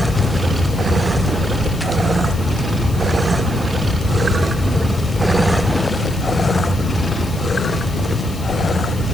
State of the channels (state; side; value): noise; left; hiss, 18 dB below the sound